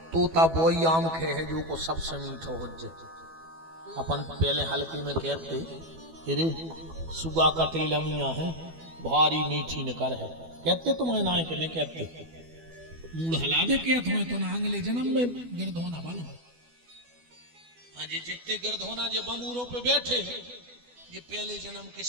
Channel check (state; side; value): late; left; 12 ms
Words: तोता वही आम खे है जो को सबसे मीठो हो जाए। अपन पहले हल्के में कहते अरे सुगा कटेल अमिया है भारी मीठी निकर है, कहते तुम्हें ना कि नहीं कहते। मूड हला दे क्या तुम्हें तो ना अगले जन्म में गिरद होना बनो। हाँ जी, जितने गिरद होना जो बमूरों पे बैठे हैं, ये पहले जन्म के